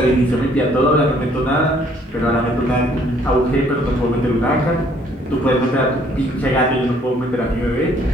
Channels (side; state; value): both; normal; correlation 0.62